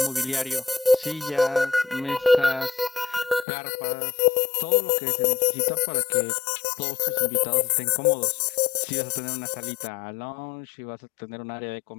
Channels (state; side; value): drops out; right; at 3.5 s